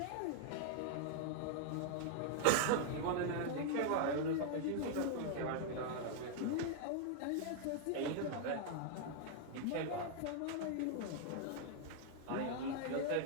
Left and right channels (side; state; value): both; different; correlation 0.00